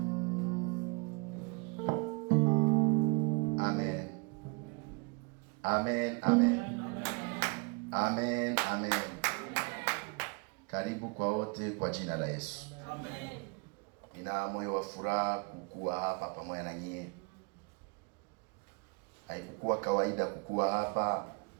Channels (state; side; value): quieter; left; 31.5 dB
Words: Amen. Amen. Amen. Amen. Amen. Karibu kwa wote kwa jina la Yesu. Amen. Nina moyo wa furaha kukua hapa pamoja na nyie. Haikukuwa kawaida kukua hapa.